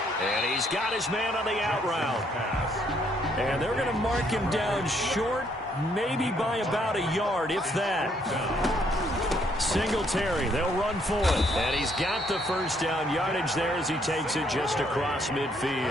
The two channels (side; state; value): both; normal; correlation 0.69